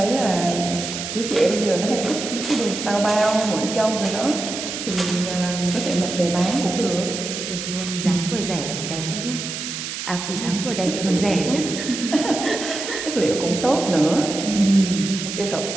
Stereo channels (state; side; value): noise; right; hiss, 6 dB below the sound